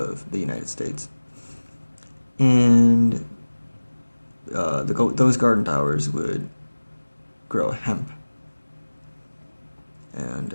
the United States, and those garden towers would grow hemp. And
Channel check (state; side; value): inverted; both; correlation -1.00